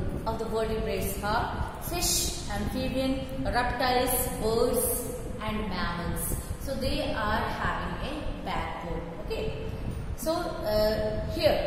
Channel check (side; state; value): both; identical; correlation 1.00